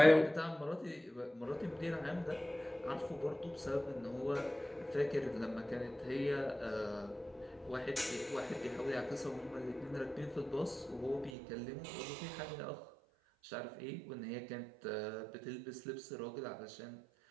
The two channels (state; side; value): drops out; left; at 11.3 s